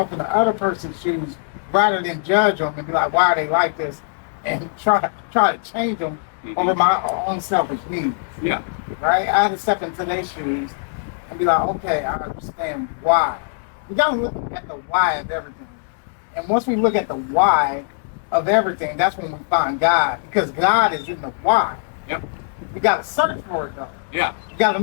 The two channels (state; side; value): silent; right; 62 dB below the other